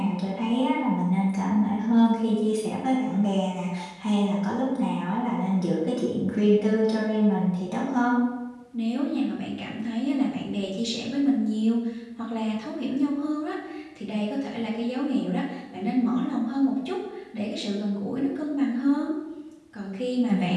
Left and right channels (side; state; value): both; identical; correlation 1.00